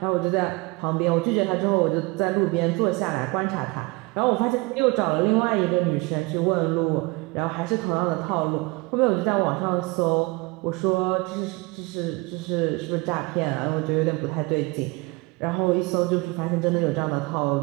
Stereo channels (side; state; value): left; quieter; 25.6 dB